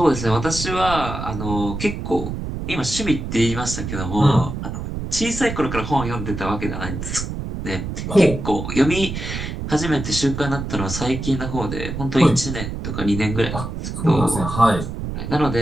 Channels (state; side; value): noise; right; rumble, 6 dB below the sound